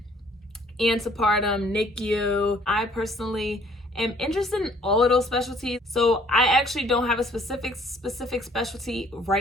antepartum, NICU. I personally am interested in all of those specialties. So I actually don't have a specific specialty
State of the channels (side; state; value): both; normal; correlation 0.60